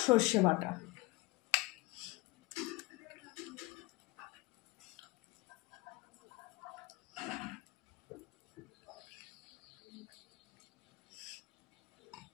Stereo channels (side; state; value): right; quieter; 21.8 dB